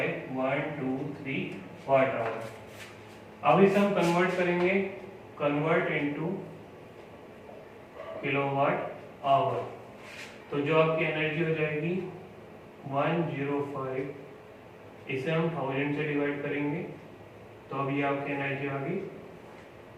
watt hour. अब इसे हम कन्वर्ट करेंगे, कन्वर्ट इनटू किलोवाट आवर, तो जो आपकी एनर्जी हो जाएगी 105, इसे हम 1000 से डिवाइड करेंगे, तो अब ये आपकी एनर्जी आ गई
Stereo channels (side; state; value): both; identical; correlation 1.00